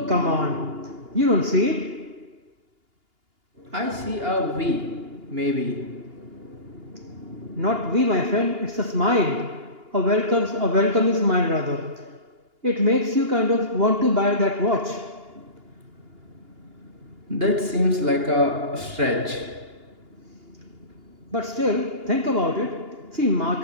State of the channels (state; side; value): late; left; 2.8 ms